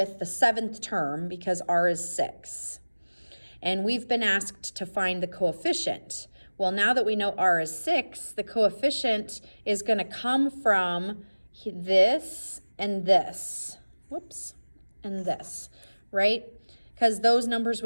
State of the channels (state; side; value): inverted; both; correlation -1.00